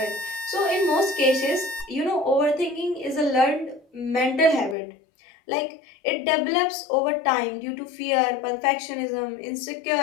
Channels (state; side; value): drops out; right; at 4.8 s